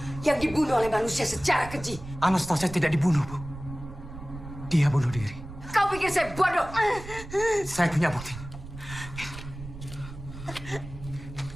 yang dibunuh oleh manusia secara keji. Anastasia tidak dibunuh, Bu. Dia bunuh diri. Kau pikir saya bodoh? Saya punya bukti.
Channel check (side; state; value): right; noise; rumble, 13 dB below the sound